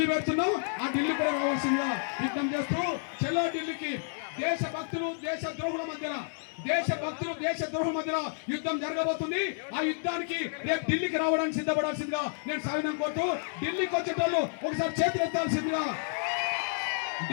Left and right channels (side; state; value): right; silent; 57 dB below the other